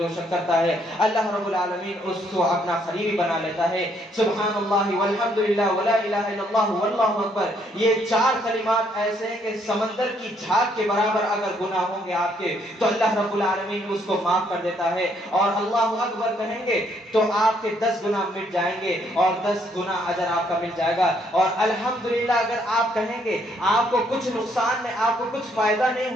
شخص کرتا ہے اللہ رب العالمین اس کو اپنا قریبی بنا لیتا ہے. سبحان اللہ والحمد للہ ولا الہ الا اللہ واللہ اکبر, یہ 4 کلمات ایسے ہیں کہ سمندر کی جھاگ کے برابر اگر گناہ ہوں گے آپ کے تو اللہ رب العالمین اس کو معاف کر دیتا ہے. اور اللہ اکبر کہیں گے تو آپ کے 10 گناہ مٹ جائیں گے اور 10 گنا اجر آپ کا مل جائے گا. اور الحمدللہ اگر آپ کہیں گے آپ کو کچھ نقصان میں آپ کو کچھ فائدہ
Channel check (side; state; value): both; normal; correlation 0.69